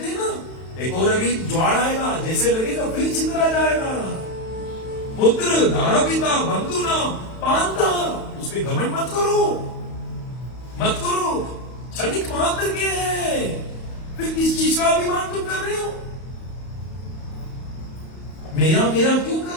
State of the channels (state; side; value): late; right; 31 ms